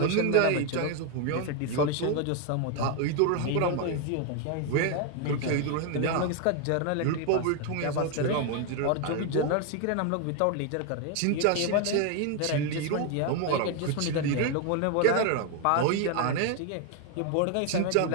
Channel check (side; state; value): both; different; correlation 0.01